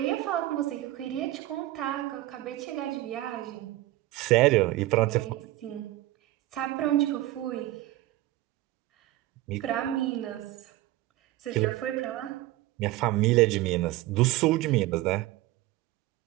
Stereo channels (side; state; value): left; quieter; 16.6 dB